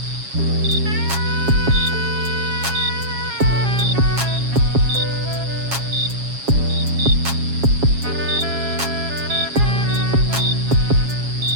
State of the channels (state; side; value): late; left; 7.3 ms